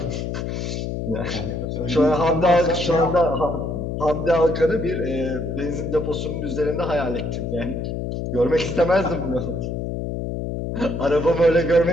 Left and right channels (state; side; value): noise; left; hum, 4 dB below the sound